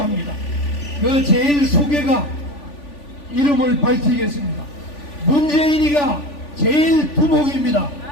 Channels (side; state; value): right; late; 3.4 ms